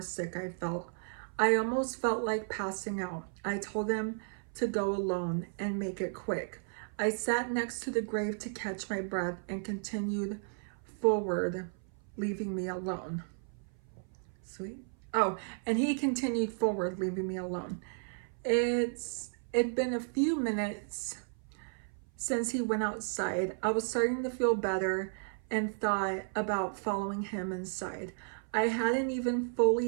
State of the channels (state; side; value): silent; left; 55 dB below the other